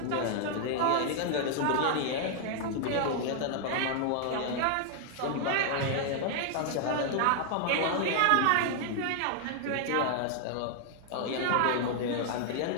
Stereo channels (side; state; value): both; different; correlation 0.00